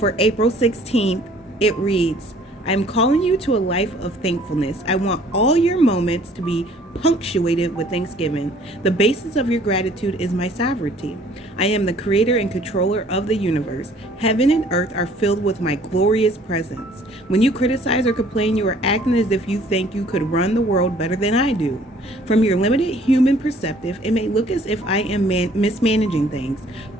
April 16th, it reads, I'm calling you to a life of thankfulness. I want all your moments to be punctuated with thanksgiving. The basis of your gratitude is my sovereignty. I am the creator and controller of the universe. Heaven and earth are filled with my glorious presence. When you criticize or complain, you are acting as if you think you could run the world better than I do. From your limited human perspective, it may look as if I am mismanaging things,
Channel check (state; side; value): normal; both; correlation 0.56